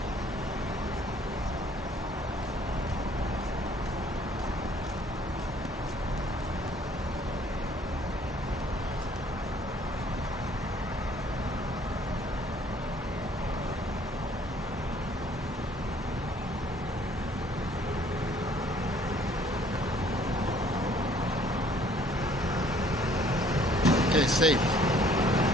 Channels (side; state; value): both; normal; correlation 0.59